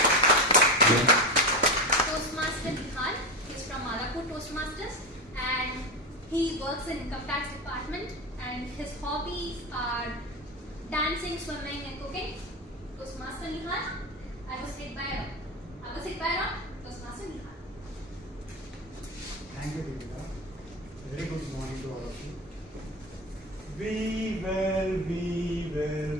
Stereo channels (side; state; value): both; normal; correlation 0.20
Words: Toastmaster Nihal is from Miyapur Toastmasters and he works in income tax department and his hobbies are dancing, swimming and cooking. Toastmaster Nihal, I was hit by a rock. Toastmaster Nihal. Thank you, Deepika. Very good morning to all of you. We will